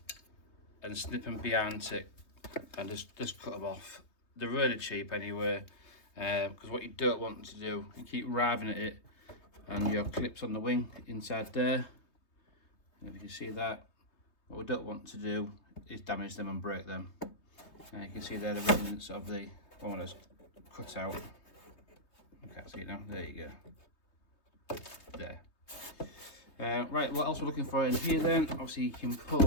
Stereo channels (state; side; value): late; right; 3.2 ms